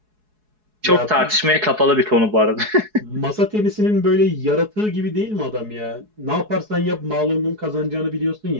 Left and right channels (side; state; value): left; late; 4.7 ms